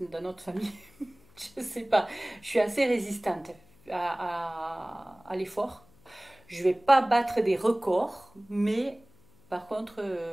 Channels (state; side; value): noise; left; hum, 29 dB below the sound